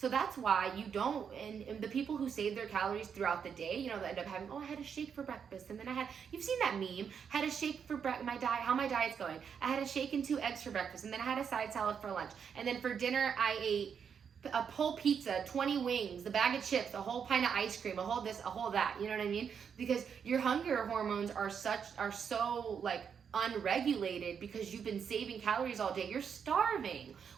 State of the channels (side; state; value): left; quieter; 7.1 dB